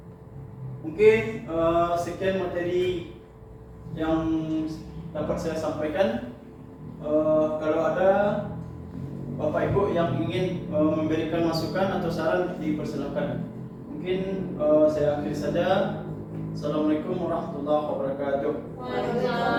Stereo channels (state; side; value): identical; both; correlation 1.00